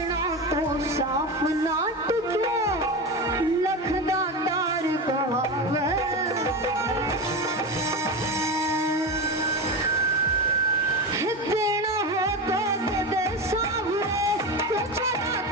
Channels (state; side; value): normal; both; correlation 0.21